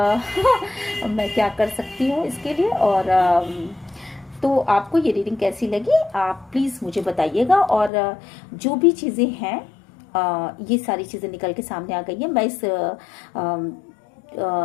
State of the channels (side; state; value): right; drops out; at 7.9 s